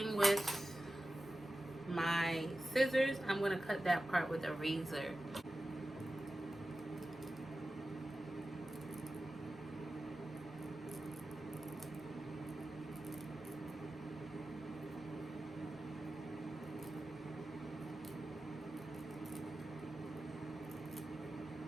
with my scissors, I'm gonna cut that part with a razor.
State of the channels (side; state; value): both; normal; correlation 0.93